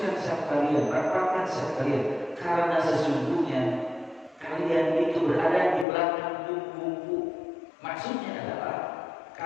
saf kalian, rapatkan saf kalian, karena sesungguhnya kalian itu berada di belakang bumbu. Maksudnya adalah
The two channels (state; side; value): drops out; right; at 5.9 s